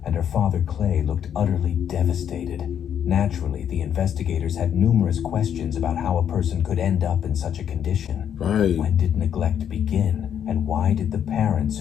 and her father Clay looked utterly devastated. Naturally, the investigators had numerous questions about how a person could end up in such a condition. Right. When did neglect begin? And why did the parents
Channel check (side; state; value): right; quieter; 9.0 dB